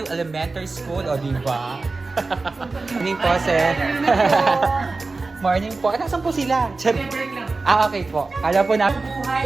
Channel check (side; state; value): left; quieter; 3.7 dB